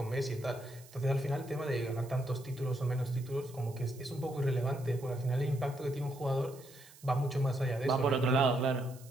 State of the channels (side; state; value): right; noise; hiss, 22 dB below the sound